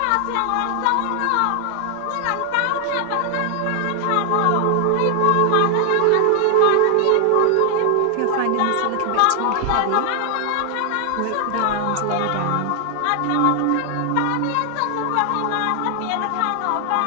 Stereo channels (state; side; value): different; both; correlation 0.00